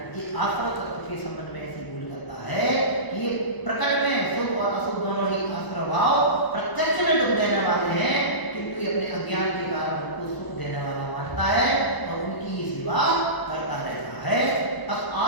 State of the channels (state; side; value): late; right; 1.0 ms